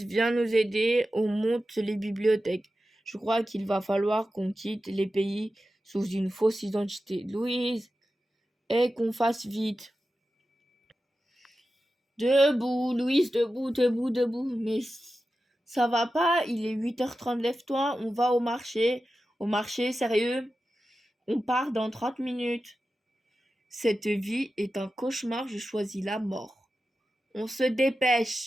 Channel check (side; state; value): both; normal; correlation 0.92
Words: viens nous aider. On monte les bibliothèques. Je crois qu'il va falloir qu'on quitte les pays sous une fausse identité. Louise, et qu'on fasse vite. Debout, Louise, debout, debout, debout. Mais ça va pas, il est 8h30, lève-toi, on va au marché. Au marché, sérieux? On part dans 30 minutes. Cette vie est un cauchemar, je choisis la mort. On se